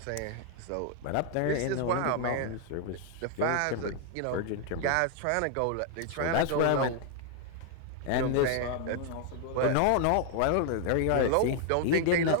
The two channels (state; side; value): different; both; correlation 0.00